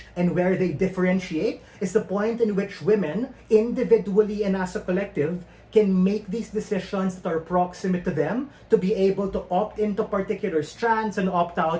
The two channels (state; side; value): identical; both; correlation 1.00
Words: and where they differentiate is the point in which women, individually and as a collective, can make these decisions that are proximate to them to be able to opt into particular strands and opt